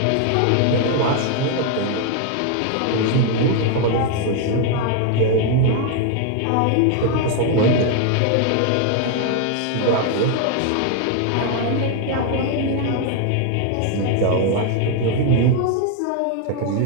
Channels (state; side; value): different; both; correlation 0.00